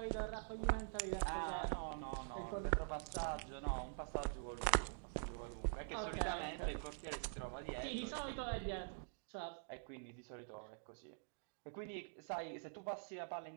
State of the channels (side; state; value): left; silent; digital silence